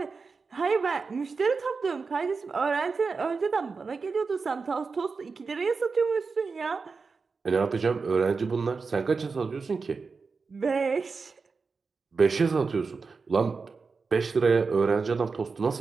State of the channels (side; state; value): left; quieter; 4.7 dB